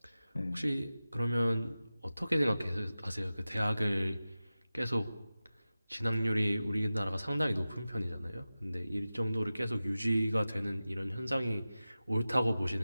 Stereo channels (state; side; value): inverted; both; correlation -0.95